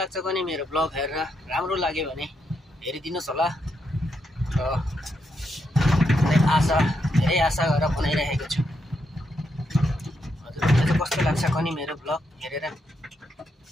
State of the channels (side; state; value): both; normal; correlation 0.80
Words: भने मेरो ब्लग हेरेर राम्रो लाग्यो भने हेरिदिनुस् होला र धेरै आशा गरेर बनाइरहेको छु। हजुरहरुलाई चाहिँ कस्तो लाग्छ भने मेरो ब्लग हेरेर।